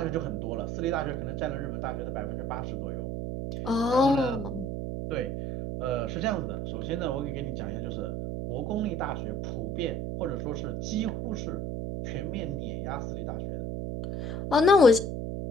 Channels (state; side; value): noise; right; hum, 3 dB below the sound